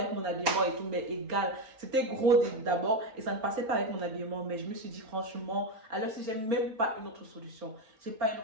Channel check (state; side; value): late; left; 4.3 ms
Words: mon habillement et tout, mais égal. C'était gros d'abord et ça ne passait pas avec mon habillement. Mais je me suis dit franchement, alors si j'ai même pas une autre solution. J'ai pas une